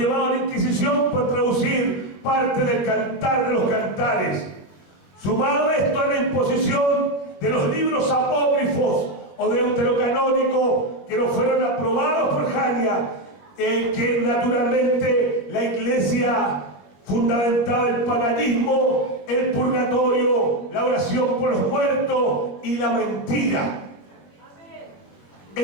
a la Inquisición por traducir parte del Cantar de los Cantares. Sumado esto a la imposición de los libros apócrifos o deuterocanónicos que no fueron aprobados por Jania, que naturalmente la iglesia fundamentaba el paganismo, el purgatorio, la oración por los muertos y la mentira.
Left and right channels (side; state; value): right; late; 21 ms